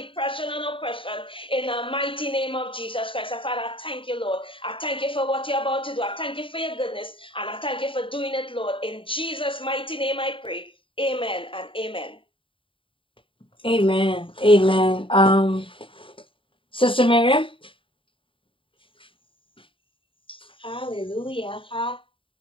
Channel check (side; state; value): right; late; 0.25 ms